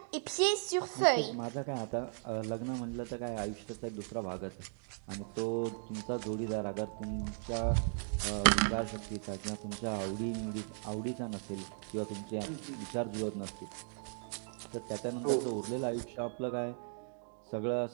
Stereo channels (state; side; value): silent; left; 53 dB below the other